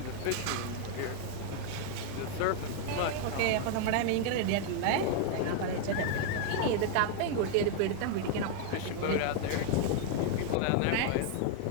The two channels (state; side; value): different; both; correlation 0.00